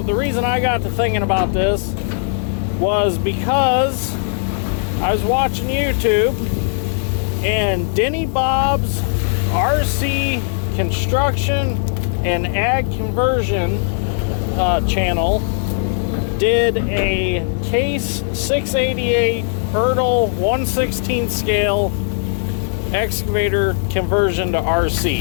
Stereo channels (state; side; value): silent; right; digital silence